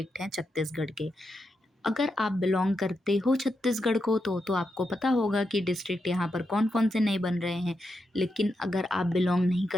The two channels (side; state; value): both; normal; correlation 0.85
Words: हैं छत्तीसगढ़ के। अगर आप बिलोंग करते हो छत्तीसगढ़ को तो आपको पता होगा कि डिस्ट्रिक्ट यहाँ पर कौन कौन से नए बन रहे हैं। लेकिन अगर आप बिलोंग नहीं